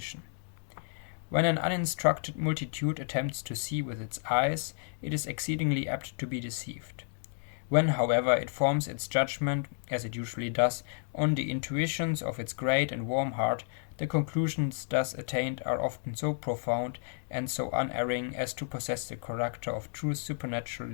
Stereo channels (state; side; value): silent; right; digital silence